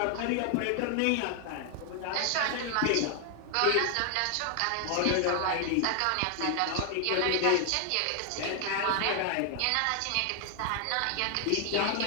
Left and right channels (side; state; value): both; different; correlation 0.00